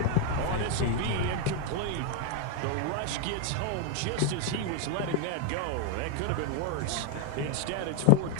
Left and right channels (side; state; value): both; different; correlation 0.01